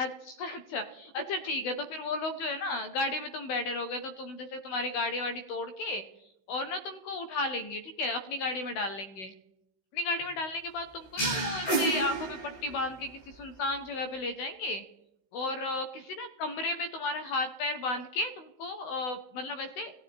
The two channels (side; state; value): right; late; 15 ms